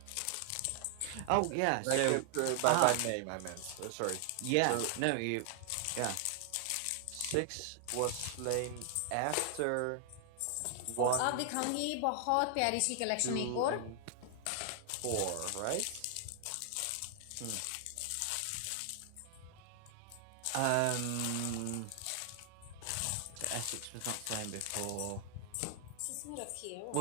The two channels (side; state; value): both; different; correlation 0.00